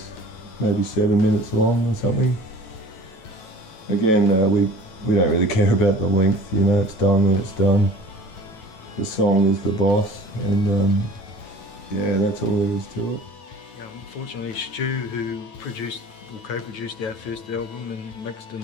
maybe 7 minutes long or something. Again, we don't really care about the length, you know, it's done when it's done. The song is the boss, and yeah, that's all there is to it. Yeah, unfortunately, Stu, who produced or co-produced our first album and mixed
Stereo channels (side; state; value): right; late; 9.2 ms